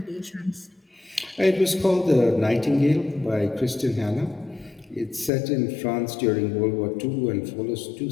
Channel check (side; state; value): right; drops out; at 5.3 s